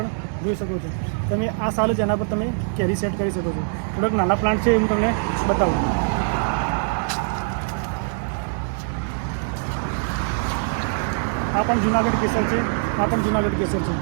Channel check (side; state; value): left; silent; digital silence